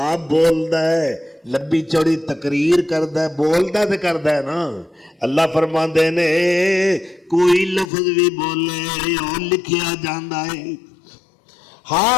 بولدا ہے، لمبی چوڑی تقریر کردا ہے، بولدا تے کردا ہے نا۔ اللہ فرماندے نے کوئی لفظ بھی بولے اور لکھیا جاندا ہے۔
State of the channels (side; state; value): right; drops out; at 7.9 s